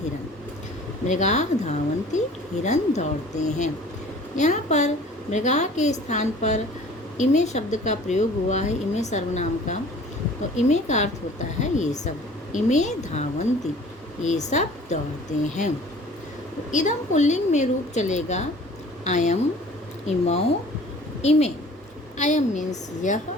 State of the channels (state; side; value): normal; both; correlation 0.48